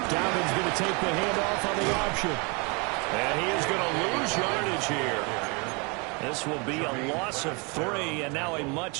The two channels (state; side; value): quieter; left; 31.3 dB